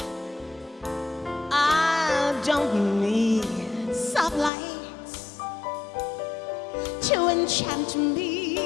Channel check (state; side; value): drops out; right; at 4.5 s